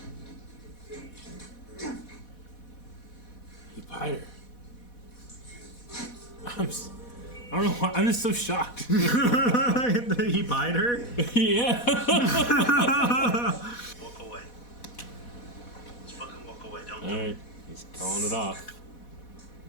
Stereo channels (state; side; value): late; right; 4.1 ms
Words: He bite her. I don't know why. I'm just so shocked. He pied her? Yeah. Walk away. Let's fucking walk away. Don't All right. He's calling it off.